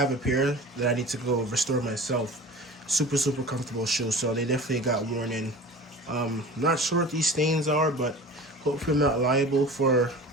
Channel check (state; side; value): normal; both; correlation 0.38